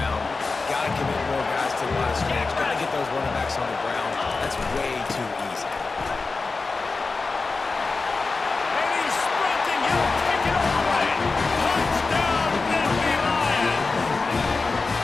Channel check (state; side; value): quieter; right; 4.0 dB